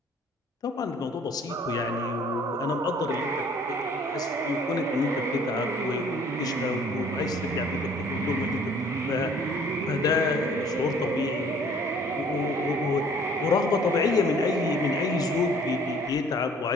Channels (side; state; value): both; normal; correlation 0.56